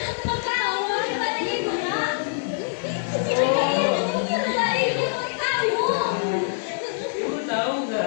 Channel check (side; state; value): right; silent; 62 dB below the other